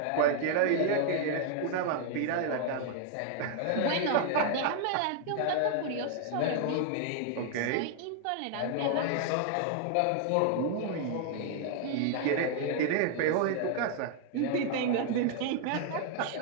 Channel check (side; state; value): both; different; correlation 0.00